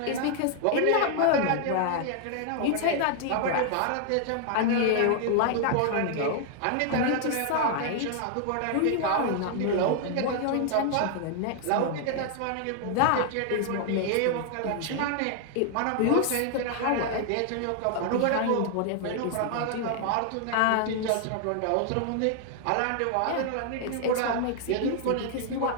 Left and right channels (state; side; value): different; both; correlation 0.00